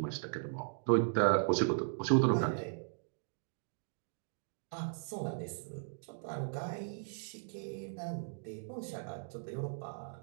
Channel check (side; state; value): left; silent; digital silence